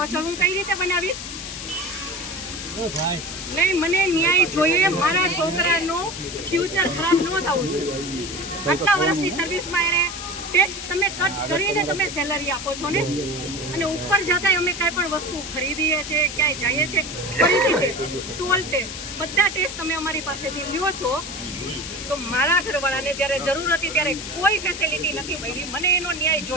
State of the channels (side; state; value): left; noise; hiss, 8 dB below the sound